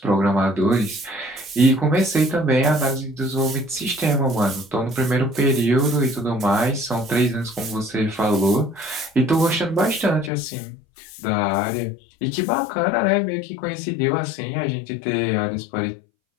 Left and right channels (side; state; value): right; drops out; at 10.3 s